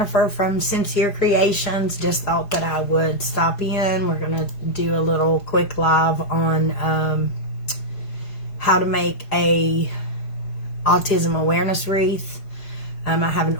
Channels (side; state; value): right; late; 4.9 ms